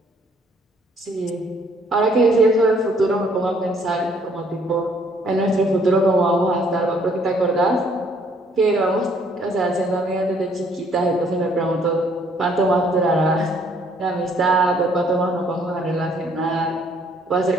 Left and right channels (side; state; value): both; normal; correlation 0.64